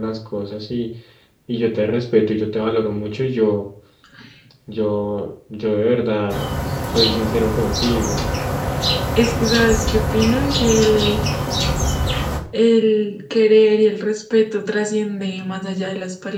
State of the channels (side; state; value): both; identical; correlation 1.00